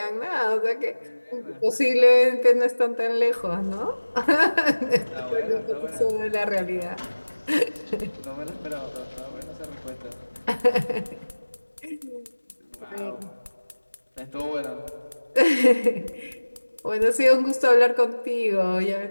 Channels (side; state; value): both; inverted; correlation -1.00